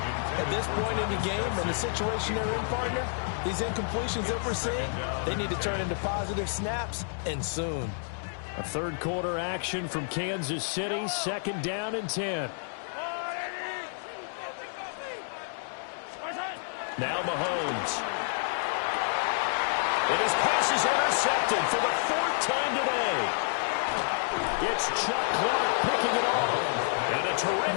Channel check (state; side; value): silent; right; digital silence